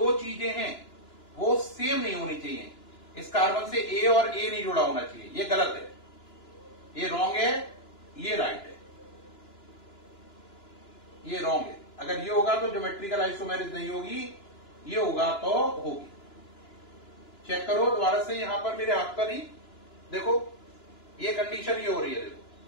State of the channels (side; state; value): right; late; 2.9 ms